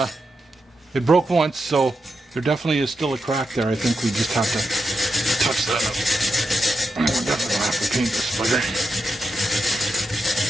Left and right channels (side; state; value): both; normal; correlation 0.87